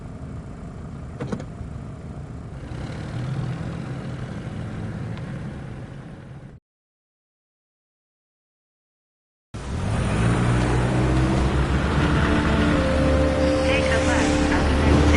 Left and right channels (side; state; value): both; identical; correlation 1.00